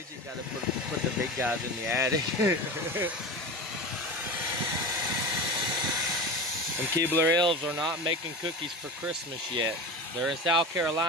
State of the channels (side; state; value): both; normal; correlation 0.28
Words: got to put the big guys in the attic? And Keebler elves are not making cookies for Christmas yet. They're in South